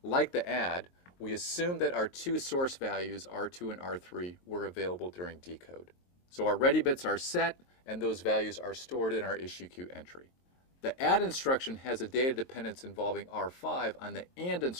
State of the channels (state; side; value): late; right; 22 ms